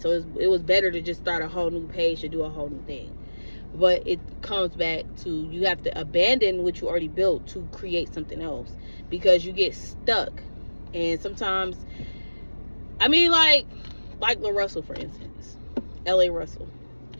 So it was better to just start a whole new page to do a whole new thing. But it comes back to, you have to abandon what you already built to create something else, because you get stuck. And sometimes, I mean, like La Russell, for instance, L.A. Russell,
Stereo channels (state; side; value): inverted; both; correlation -1.00